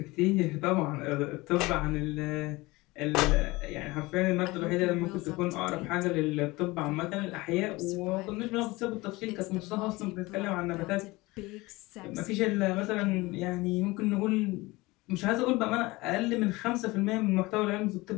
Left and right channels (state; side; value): quieter; right; 21.7 dB